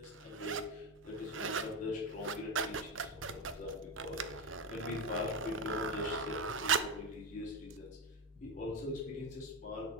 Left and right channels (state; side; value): normal; both; correlation 0.13